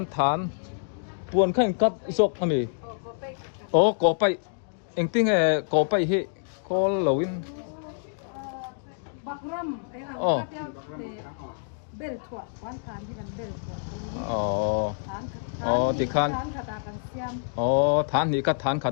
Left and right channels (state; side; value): silent; right; digital silence